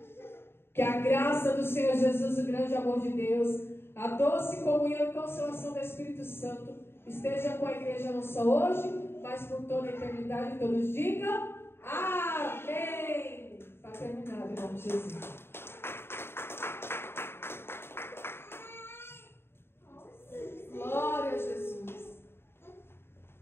Que a graça do Senhor Jesus, o grande amor de Deus, a doce comunhão e consolação do Espírito Santo esteja com a igreja não só hoje, mas por toda a eternidade. Todos digam amém. Está terminado em nome de Jesus. Glória a Jesus.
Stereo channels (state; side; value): late; right; 0.11 ms